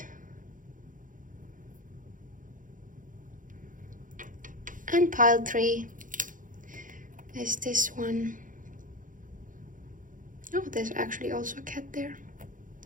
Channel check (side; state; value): left; late; 0.38 ms